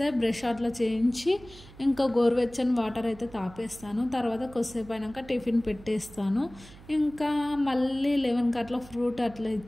బ్రష్ అట్లా చేయించి ఇంకా గోరువెచ్చని వాటర్ అయితే తాపేస్తాను. తర్వాత కొద్దిసేపు అయినాక టిఫిన్ పెట్టేస్తాను. ఇంకా మళ్ళీ 11కి అట్లా ఫ్రూట్ అట్లా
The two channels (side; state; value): right; noise; hum, 20 dB below the sound